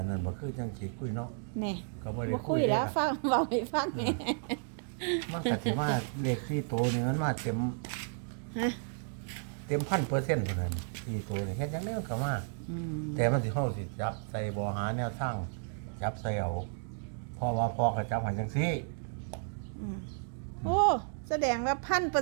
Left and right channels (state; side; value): silent; left; digital silence